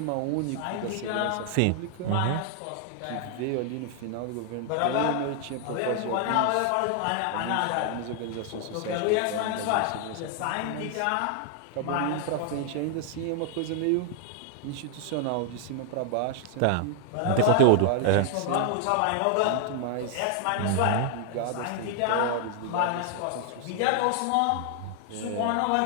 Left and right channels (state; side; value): different; both; correlation 0.00